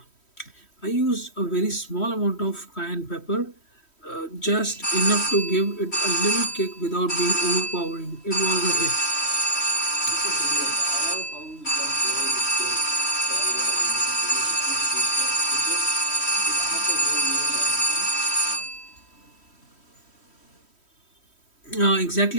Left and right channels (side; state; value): right; late; 3.1 ms